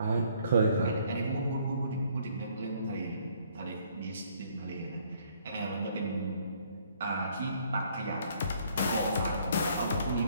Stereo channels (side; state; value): both; inverted; correlation -0.64